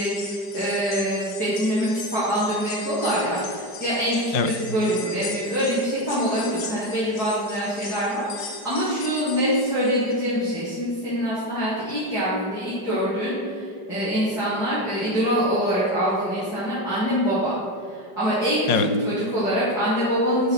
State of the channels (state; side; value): late; right; 5.0 ms